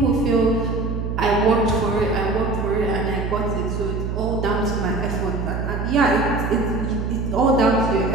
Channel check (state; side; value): noise; right; hum, 3 dB below the sound